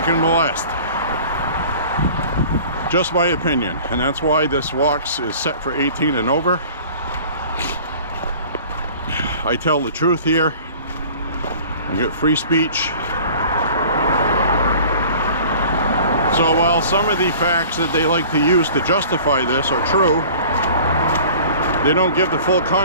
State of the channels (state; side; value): inverted; both; correlation -0.45